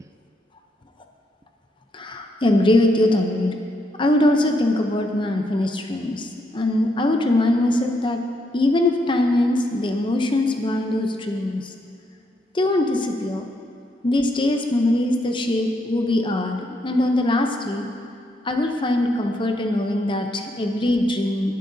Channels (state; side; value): normal; both; correlation 0.77